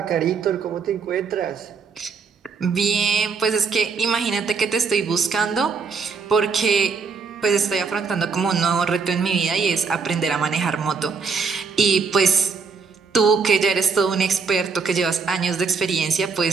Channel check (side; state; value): left; quieter; 5.2 dB